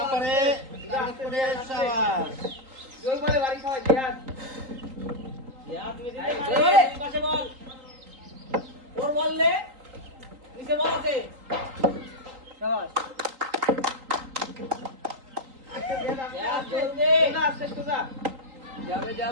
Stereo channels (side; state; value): left; late; 3.8 ms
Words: পারে টার্গেট করে শাবাশ জোর করে বাড়ি খাওয়া জিয়াদ তুমি দিতে পাশে বল ওর বললে নিচে বল আছে শাবাশ